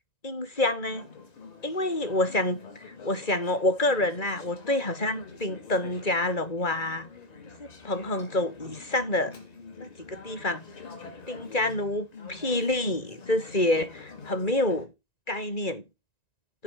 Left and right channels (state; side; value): late; right; 1.9 ms